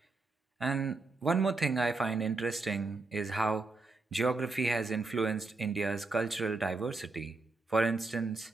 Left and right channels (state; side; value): quieter; left; 3.5 dB